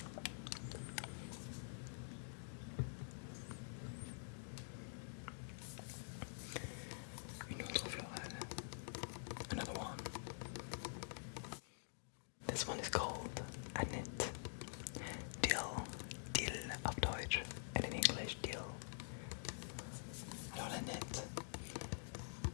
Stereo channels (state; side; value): silent; right; digital silence